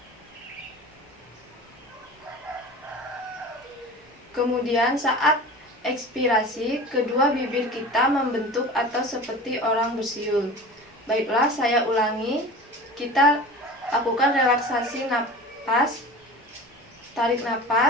Kemudian saat ekspirasi, kedua bibir kita membentuk atau seperti orang bersiul. Baiklah, saya ulangi. Kita lakukan relaksasi napas. Tarik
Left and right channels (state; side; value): normal; both; correlation 0.36